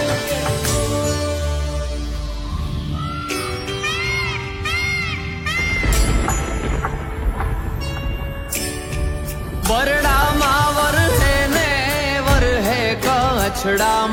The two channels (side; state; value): both; identical; correlation 1.00